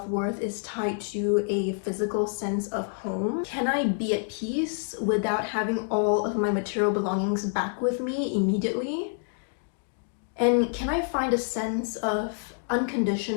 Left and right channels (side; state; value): right; silent; 60 dB below the other